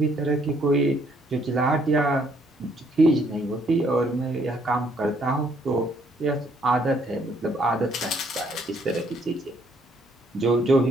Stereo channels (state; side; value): normal; both; correlation 0.67